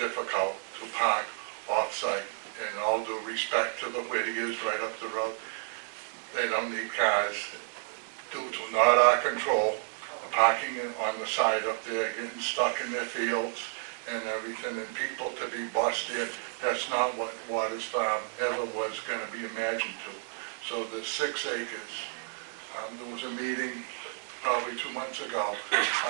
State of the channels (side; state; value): left; silent; 57 dB below the other